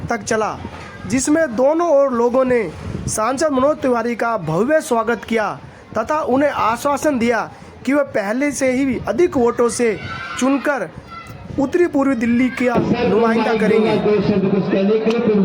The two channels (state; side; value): identical; both; correlation 1.00